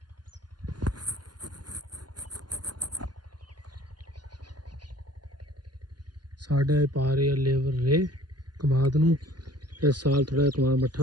ਸਾਡੇ ਪਾ ਰਹੇ ਲੇਬਰ ਰੇ ਕਮਾਦ ਨੂੰ ਇਸ ਸਾਲ ਥੋੜਾ ਕਮਾਦ ਮੱਠਾ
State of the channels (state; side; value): late; left; 0.70 ms